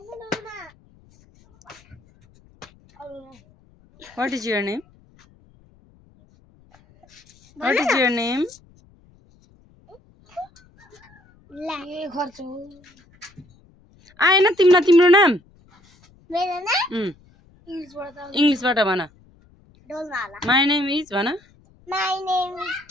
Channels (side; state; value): left; noise; rumble, 29 dB below the sound